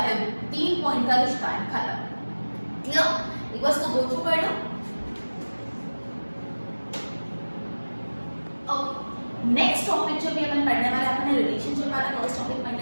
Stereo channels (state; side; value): inverted; both; correlation -1.00